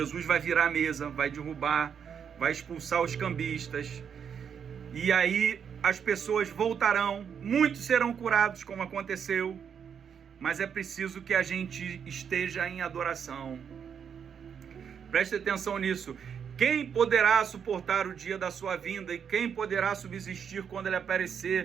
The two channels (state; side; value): quieter; left; 7.5 dB